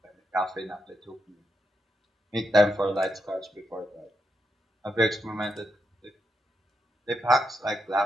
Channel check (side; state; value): both; normal; correlation 0.83